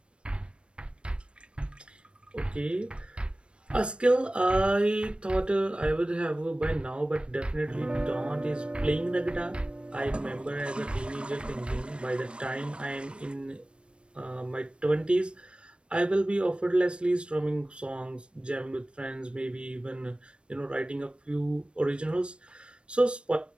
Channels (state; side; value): late; left; 0.057 ms